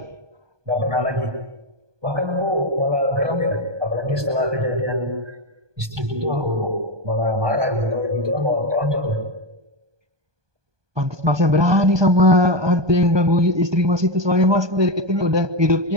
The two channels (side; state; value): left; late; 1.2 ms